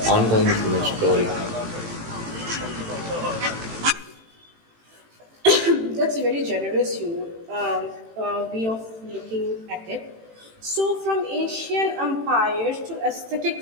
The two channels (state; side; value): late; left; 18 ms